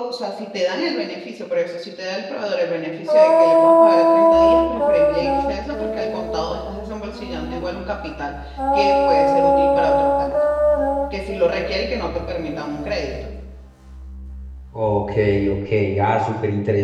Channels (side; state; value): both; identical; correlation 1.00